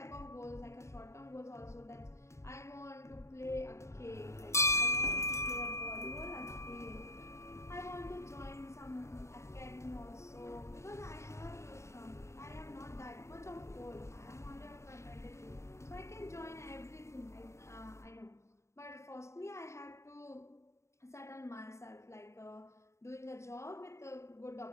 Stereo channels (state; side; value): late; right; 0.14 ms